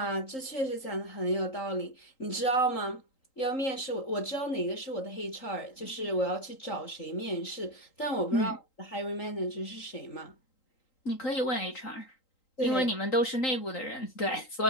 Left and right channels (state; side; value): late; right; 3.8 ms